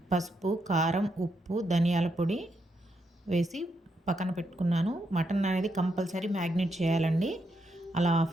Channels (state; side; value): normal; both; correlation 0.80